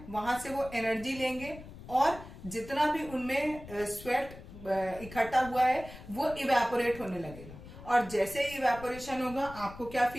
वहां से वो एनर्जी लेंगे और जितना भी उनमें स्वेट इकट्ठा हुआ है वो इवेपोरेट होने लगेगा। और जैसे ही इवेपोरेशन होगा आपको क्या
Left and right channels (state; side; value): noise; left; rumble, 15 dB below the sound